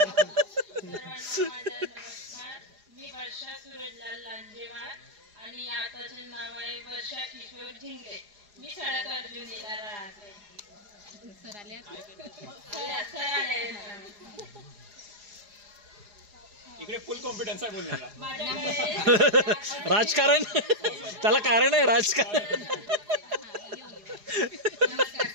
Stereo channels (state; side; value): late; left; 4.8 ms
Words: मी वर्षा सूरजलाल लांजेवाड आणि आताचे नाव आहे वर्षा किशोर झिंगले मी सडक अर्जुनीला राहते सर आले इकडे फुल कॉन्फिडन्स आहे बोलण्याला राजकारण त्याला कारण आहे राजकारण